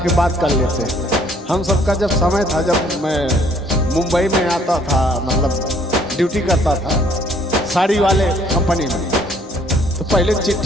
बात कर लेते हैं। हम सबका जब समय था, जब मैं मुंबई में आता था, मतलब ड्यूटी करता था साड़ी वाले कंपनी में, तो पहले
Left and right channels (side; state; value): both; normal; correlation 0.62